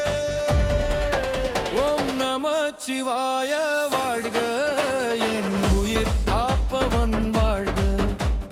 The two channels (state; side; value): identical; both; correlation 1.00